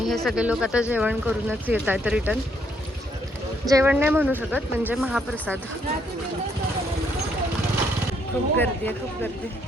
हे सगळे लोक आता जेवण करूनच येत आहेत रिटर्न. जेवण नाही म्हणू शकत म्हणजे महाप्रसाद. खूप गर्दी आहे, खूप गर्दी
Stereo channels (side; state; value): both; normal; correlation 0.72